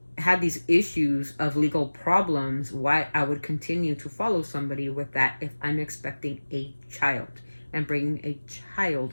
had these issues of legal problems, why I would continue to follow somebody with that if I'm expecting a child and bringing a child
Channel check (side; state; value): both; inverted; correlation -1.00